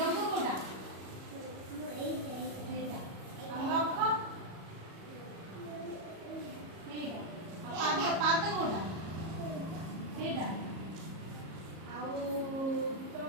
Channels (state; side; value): late; left; 37 ms